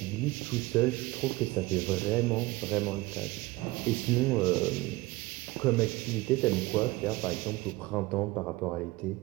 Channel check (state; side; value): quieter; left; 20.6 dB